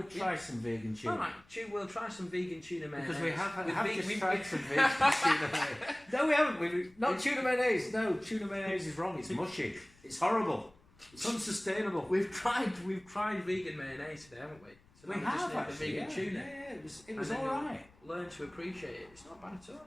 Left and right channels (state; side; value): noise; left; rumble, 28 dB below the sound